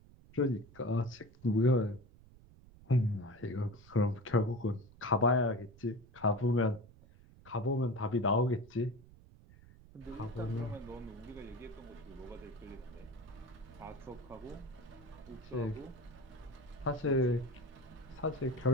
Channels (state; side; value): noise; right; rumble, 23 dB below the sound